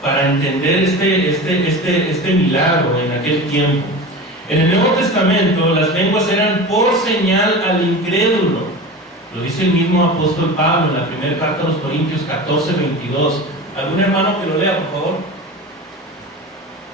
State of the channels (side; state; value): both; normal; correlation 0.30